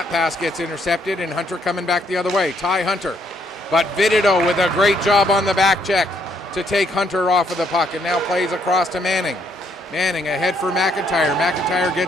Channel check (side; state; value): both; normal; correlation 0.71